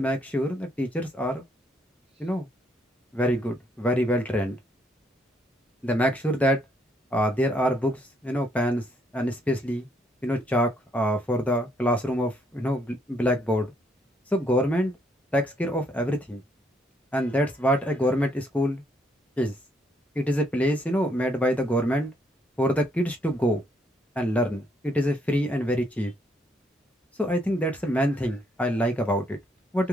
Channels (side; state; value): both; normal; correlation 0.70